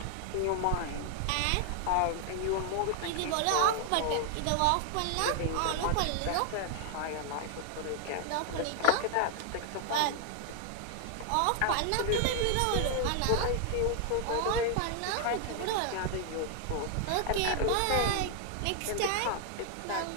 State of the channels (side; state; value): both; different; correlation 0.00